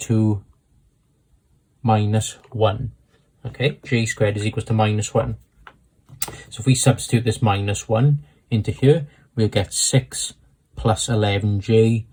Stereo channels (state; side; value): identical; both; correlation 1.00